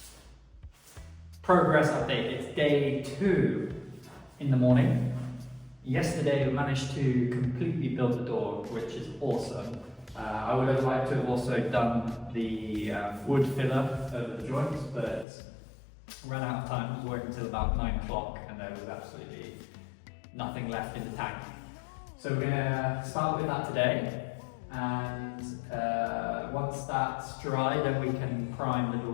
Progress update, it's day 2 in the morning. Yesterday we managed to completely build the door, which is awesome. I would have liked to have also done the wood filler over the joints, but ran out of time. It was working until about 9 o'clock and there was absolutely nothing left in the tank. So we're gonna start with that today, and once that's dry then we can prime the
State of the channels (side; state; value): right; drops out; at 15.2 s